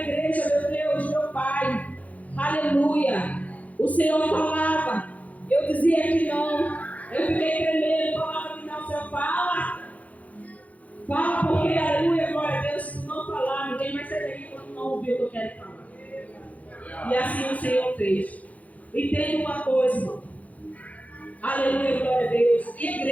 igreja, meu Deus, meu Pai, aleluia, o Senhor falava, eu dizia que não, eu fiquei tremendo, falava que não, Senhor, fala, porque, aleluia, glória a Deus, se tu não falar, ninguém vai sair daqui quando não ouvir o que eu quero falar. E assim o Senhor fez. Entenda uma coisa, irmão, aleluia, glória a Deus,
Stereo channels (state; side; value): late; right; 0.071 ms